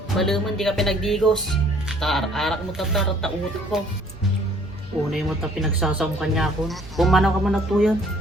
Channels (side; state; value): both; normal; correlation 0.58